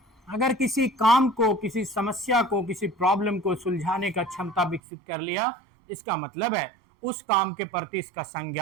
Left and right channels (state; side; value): drops out; left; at 4.8 s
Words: अगर किसी काम को, किसी समस्या को, किसी प्रॉब्लम को सुलझाने का क्षमता विकसित कर लिया, इसका मतलब है उस काम के प्रति इसका